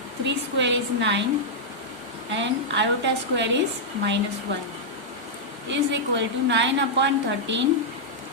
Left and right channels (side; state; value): both; normal; correlation -0.07